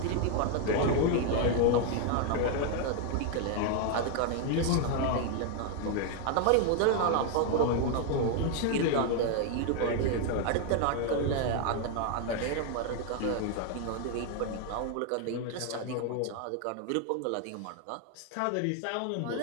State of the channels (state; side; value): different; both; correlation 0.01